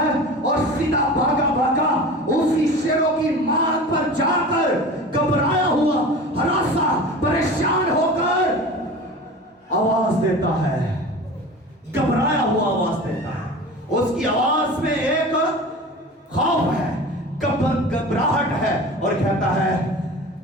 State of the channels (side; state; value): both; normal; correlation 0.36